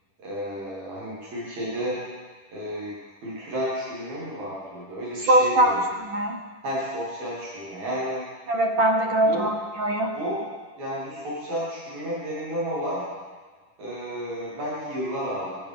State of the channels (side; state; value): left; late; 10 ms